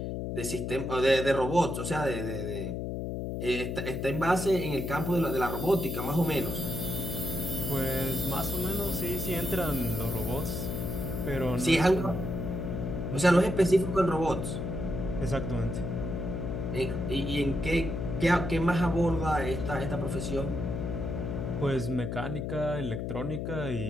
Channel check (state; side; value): noise; left; hum, 3 dB below the sound